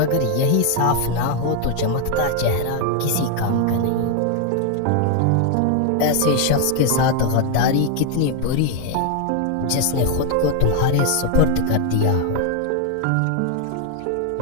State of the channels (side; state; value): both; different; correlation 0.00